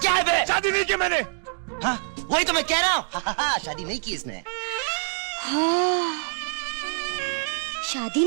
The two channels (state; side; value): silent; left; digital silence